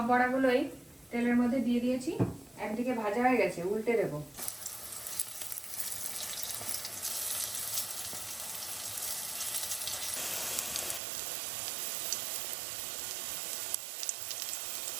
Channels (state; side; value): drops out; left; at 11.0 s